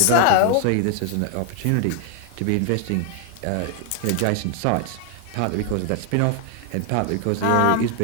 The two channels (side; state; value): both; different; correlation 0.00